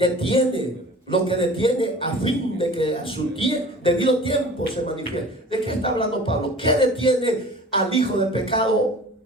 lo que detiene a fin de que a su debido tiempo se manifieste. ¿De qué está hablando Pablo? ¿Qué detiene al hijo de pecado,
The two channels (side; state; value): both; normal; correlation 0.43